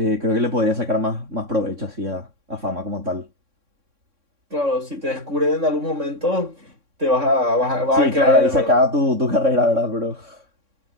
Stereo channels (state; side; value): late; left; 3.6 ms